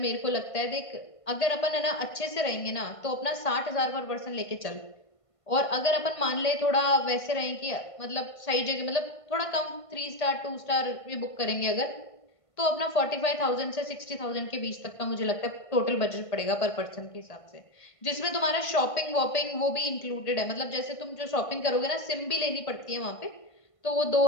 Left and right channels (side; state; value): right; late; 1.5 ms